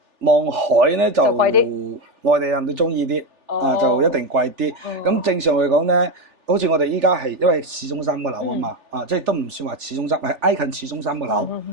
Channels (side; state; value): left; late; 3.4 ms